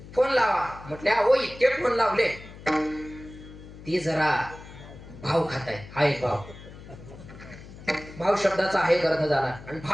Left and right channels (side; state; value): left; noise; hum, 16 dB below the sound